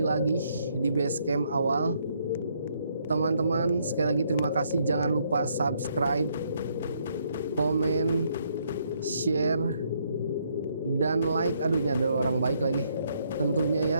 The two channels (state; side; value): inverted; both; correlation -0.71